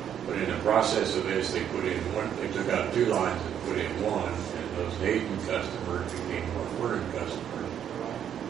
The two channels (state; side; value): quieter; left; 9.3 dB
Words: But in the process of this, they took out 2 lines and put in 1, and those Hayden customers became North Vernon customers.